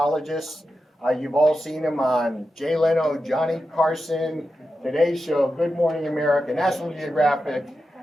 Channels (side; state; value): both; normal; correlation 0.90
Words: You've all seen him on Jay Leno, Johnny Carson, Today Show, Good Morning America, National Geographic,